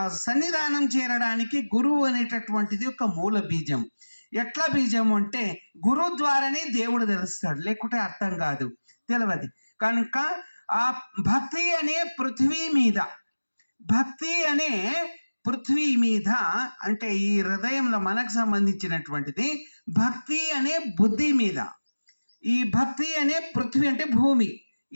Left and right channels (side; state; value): both; inverted; correlation -1.00